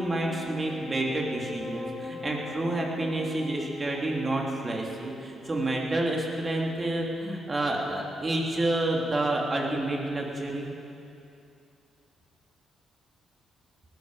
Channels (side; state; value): both; normal; correlation 0.86